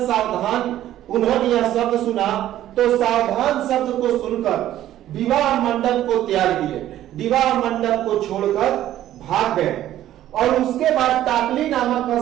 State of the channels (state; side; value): quieter; left; 12.9 dB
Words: सावधान उन्होंने यह शब्द सुना तो सावधान शब्द को सुनकर विवाह मंडप को त्याग दिए, विवाह मंडप को छोड़कर भाग गए और उसके बाद टाकली नामक